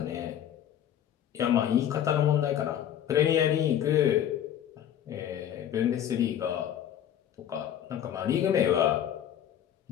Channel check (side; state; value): right; quieter; 10.4 dB